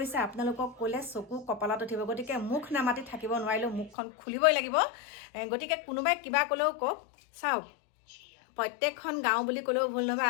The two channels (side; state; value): right; drops out; at 3.9 s